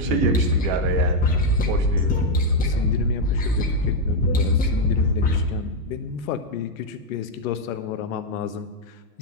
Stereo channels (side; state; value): both; normal; correlation 0.01